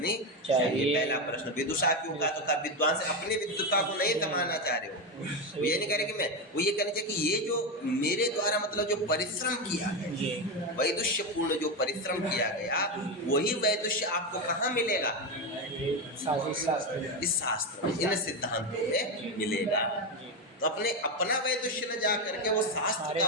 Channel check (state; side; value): normal; both; correlation 0.12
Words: चाहिए। पहला प्रश्न विदुषा क्यों कहा? तो कहा विद्वान से अपनी विद्वता को नहीं समाना चाह रहे हो, वो ये नहीं कह रहे कि मैं, वो ये कहना चाहिए कि ये जो मेरे द्वारा मतलब जो परिश्रम किया गया, वैदुष्य पूर्ण जो परिश्रम किया गया, वही वैदुष्य आपको कहाँ मिलेगा? इस शास्त्र में, इन सिद्धांतों में मिलेगा। तो अपने अपना वैदुष्य न जा करके वो शास्त्र